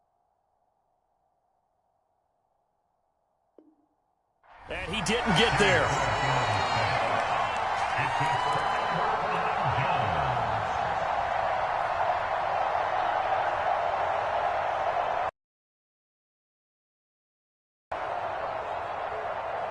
And he didn't get there.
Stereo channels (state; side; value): identical; both; correlation 1.00